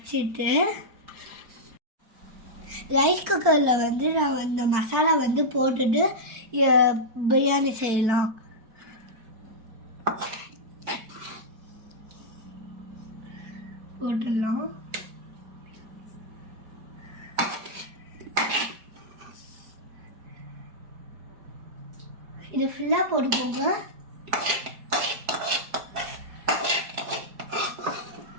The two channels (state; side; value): late; left; 4.6 ms